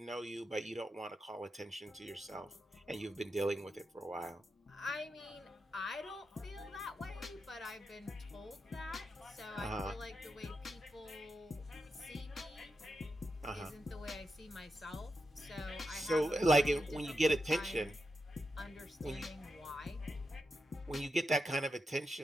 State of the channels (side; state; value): both; normal; correlation 0.87